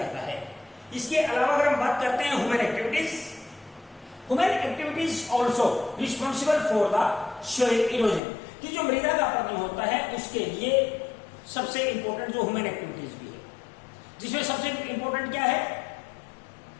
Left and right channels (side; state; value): right; drops out; at 8.2 s